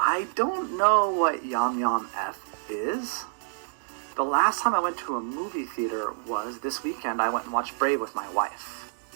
don't know what Yum Yum F is. The last time I went to a movie theater was this weekend. I went and watched Brave with my wife.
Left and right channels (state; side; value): silent; left; digital silence